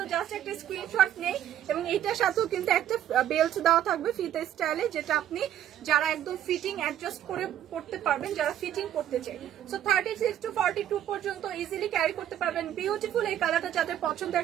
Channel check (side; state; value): left; quieter; 11.1 dB